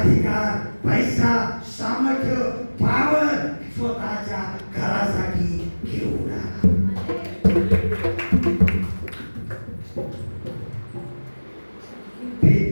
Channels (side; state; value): both; inverted; correlation -1.00